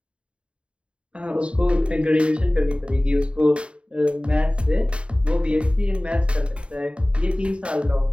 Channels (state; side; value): late; left; 0.057 ms